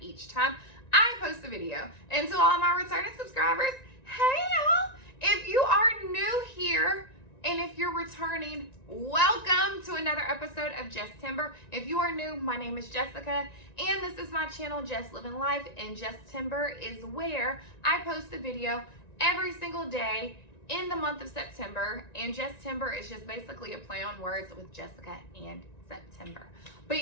each time I post a video. And to all my returning subscribers, hey y'all. If you are new here, and if you're returning, welcome to another episode of Jesstember. If you are new, my name is Jessica, and this is my channel, Jess Living Life, and Jesstember is where I post a video every single day in the month of September, and Jesstember is just basically a play on words with Jessica and September.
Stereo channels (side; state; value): right; late; 1.9 ms